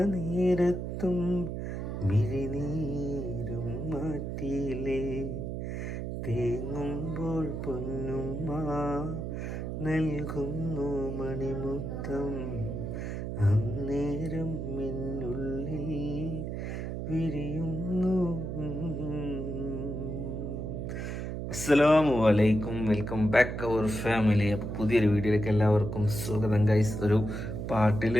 നേരത്തും മിഴിനീരും മാറ്റിയില്ലേ. തേങ്ങുമ്പോൾ പൊന്നുമ്മ നൽകുന്നു മണിമുത്തം, അന്നേരം മിന്നുള്ളിൽ വിരിയുന്നു. അസ്സലാമു അലൈക്കും, വെൽക്കം ബാക്ക് അവർ ഫാമിലി. അപ്പോൾ പുതിയൊരു വീഡിയോയിലേക്ക് എല്ലാവർക്കും സ്വാഗതം ഗൈസ്. ഒരു പാട്ടിൽ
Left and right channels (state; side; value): noise; right; hum, 4 dB below the sound